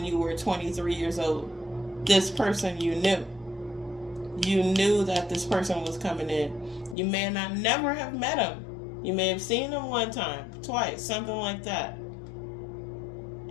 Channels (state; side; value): drops out; right; at 7.0 s